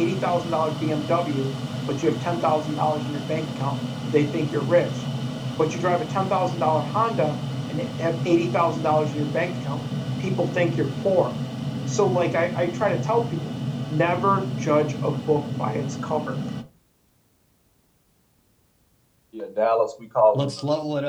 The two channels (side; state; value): both; identical; correlation 1.00